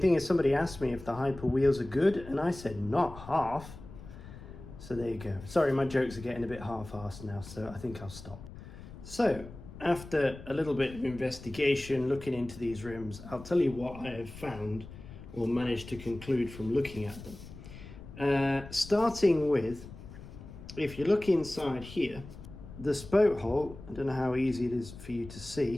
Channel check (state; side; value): noise; left; rumble, 15 dB below the sound